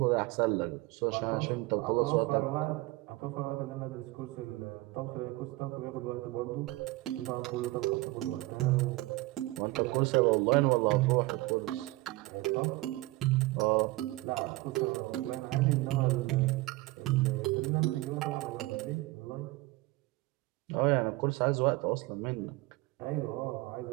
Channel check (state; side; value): quieter; left; 20.5 dB